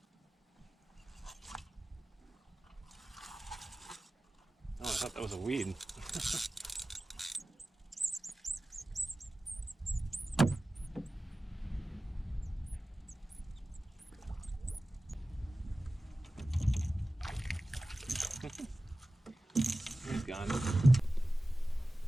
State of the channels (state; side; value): normal; both; correlation 0.96